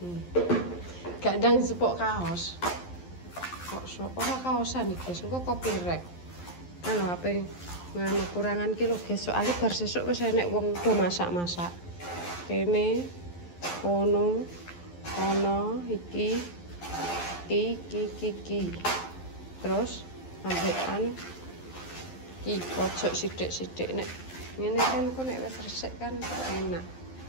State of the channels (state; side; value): late; right; 11 ms